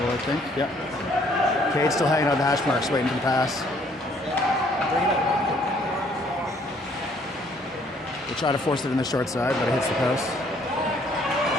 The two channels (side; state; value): both; normal; correlation 0.63